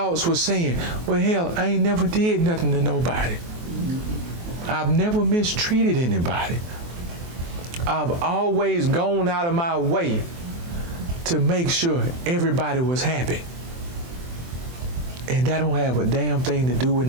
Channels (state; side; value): late; left; 23 ms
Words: were saying, well, hell, I ain't never did nothing to nobody. I've never mistreated anybody. I've always gone out of my way to make sure everybody was happy. And that don't have a damn thing to do with